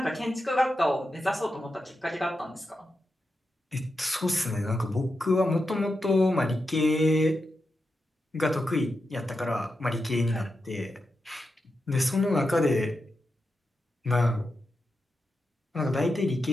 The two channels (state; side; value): normal; both; correlation 0.88